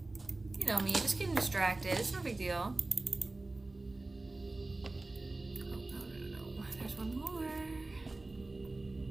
You know me, just getting distracted. It's no big deal. Oh, no. There's one more.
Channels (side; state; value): left; quieter; 3.1 dB